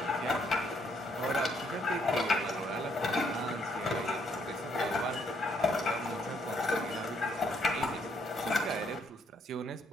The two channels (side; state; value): both; normal; correlation 0.71